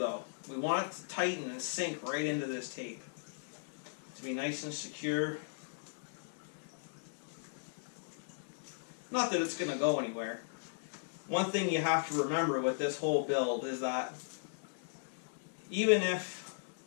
we want it to tighten and sink right into this tape to be nice and secure. Not that it's going to go anywhere. One thing you have to remember with this whole build is that even if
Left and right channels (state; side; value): silent; right; digital silence